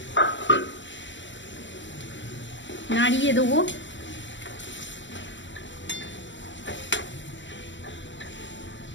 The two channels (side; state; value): right; late; 0.54 ms